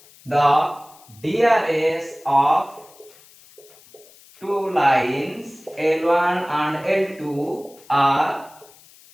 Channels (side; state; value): left; noise; hiss, 25 dB below the sound